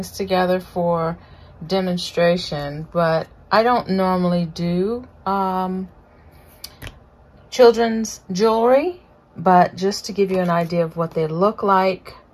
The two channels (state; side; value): identical; both; correlation 1.00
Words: together for demonstration, but I don't normally do children's jewelry, but just to give you an idea of what they look like,